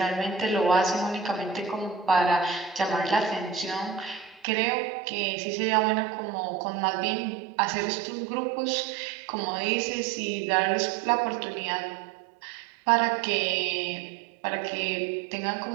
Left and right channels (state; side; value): drops out; left; at 4.4 s